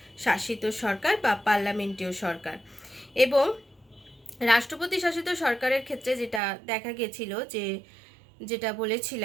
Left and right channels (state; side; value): drops out; left; at 6.4 s